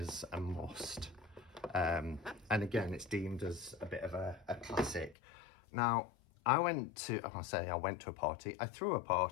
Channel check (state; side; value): drops out; right; at 5.2 s